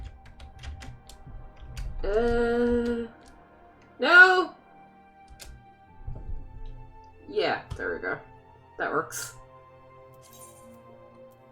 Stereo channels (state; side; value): identical; both; correlation 1.00